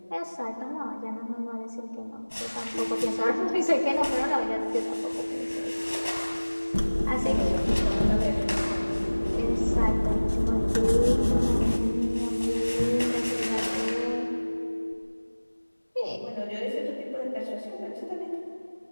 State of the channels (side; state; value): both; inverted; correlation -1.00